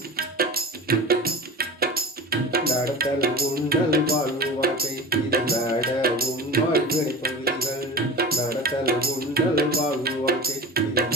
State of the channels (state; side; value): normal; both; correlation 0.33